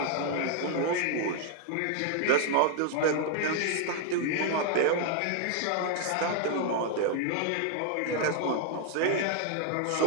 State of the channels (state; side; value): different; both; correlation 0.00